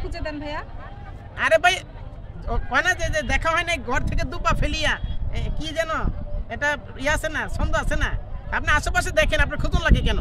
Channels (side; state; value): both; identical; correlation 1.00